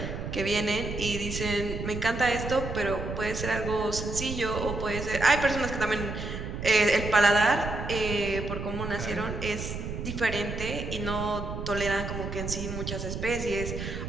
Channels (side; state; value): right; noise; rumble, 6 dB below the sound